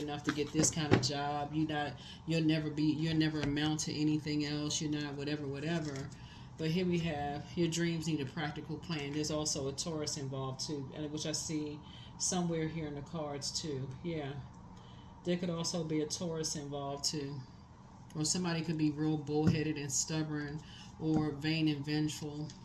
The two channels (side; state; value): both; identical; correlation 1.00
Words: to get this kind of job. You'll never amount to anything else. You're not whatever. But here we have your dreams need a practical plan. There's also a Taurus involved too, which I see somewhere here in the cards too. Yeah. There could also be a Taurus involved too. Or somebody could be real bullheaded and stubborn or vain and vengeful.